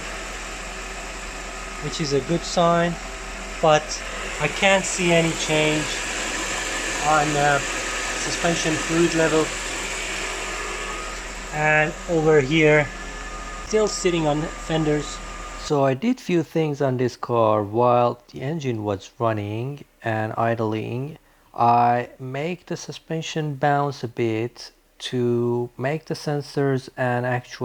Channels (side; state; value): both; identical; correlation 1.00